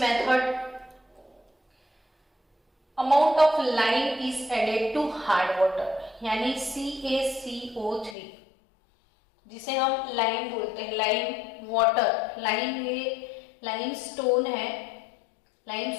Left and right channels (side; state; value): right; drops out; at 8.2 s